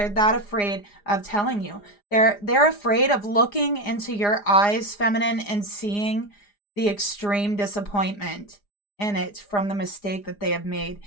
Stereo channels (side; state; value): right; late; 4.9 ms